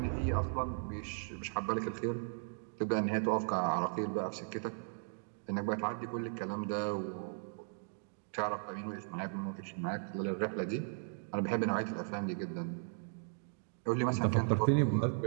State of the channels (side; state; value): left; silent; digital silence